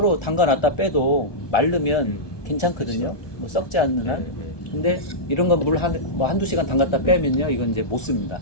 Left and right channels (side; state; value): right; late; 1.2 ms